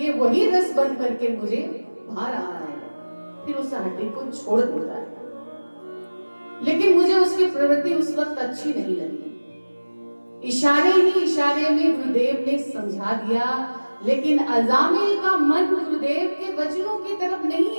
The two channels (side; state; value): both; inverted; correlation -1.00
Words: वही रस बन करके मुझे भा रहा है। फिर उस हड्डी को छोड़ देता है। लेकिन मुझे उसकी प्रवृत्ति उस वक्त अच्छी नहीं लगी। इशारे ही इशारे में गुरुदेव ने समझा दिया, लेकिन अजामिल का मन गुरुदेव के वचनों की